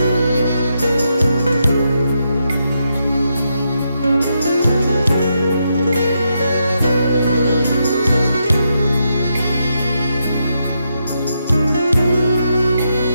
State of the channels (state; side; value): inverted; both; correlation -0.82